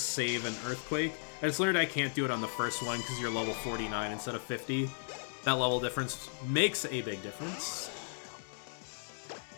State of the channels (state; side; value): silent; right; digital silence